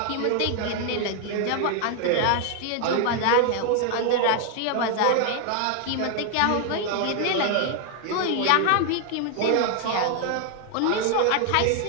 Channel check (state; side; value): different; both; correlation 0.00